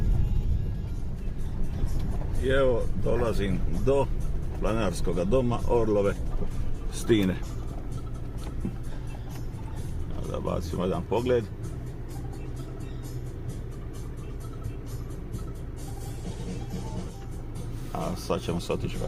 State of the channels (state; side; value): identical; both; correlation 1.00